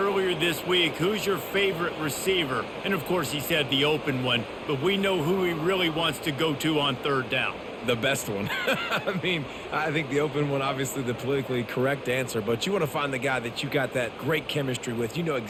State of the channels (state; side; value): identical; both; correlation 1.00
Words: this week, who's your favorite receiver? And of course he said the open one, but we know who he really wants to go to on third down. The best one. I mean, I think the open one, obviously the politically correct answer, but you want to find the guy that you got that great chemistry with. You know